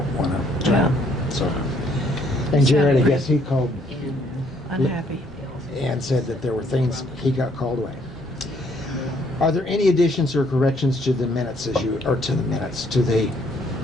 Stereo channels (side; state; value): both; normal; correlation 0.66